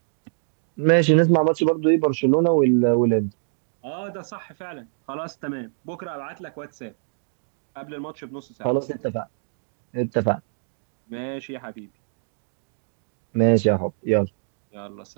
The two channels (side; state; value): left; silent; digital silence